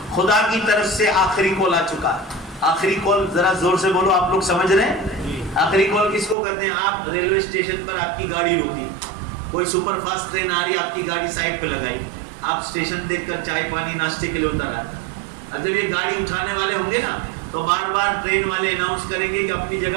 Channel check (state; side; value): drops out; left; at 6.4 s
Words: خدا کی طرف سے آخری کال آ چکا ہے. آخری کال ذرا زور سے بولو, آپ لوگ سمجھ رہے ہیں؟ آخری کال کس کو کہتے ہیں؟ آپ ریلوے اسٹیشن پر آپ کی گاڑی روکی, کوئی سپر فاسٹ ٹرین آ رہی ہے, آپ کی گاڑی سائڈ پہ لگائی, آپ اسٹیشن دیکھ کر چائے پانی ناشتے کے لیے اتر آئے. اب جب یہ گاڑی اٹھانے والے ہوں گے نا تو بار بار ٹرین والے اناؤنس کریں گے کہ اپنی